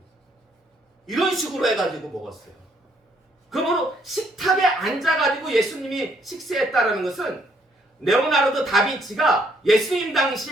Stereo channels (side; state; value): both; normal; correlation 0.69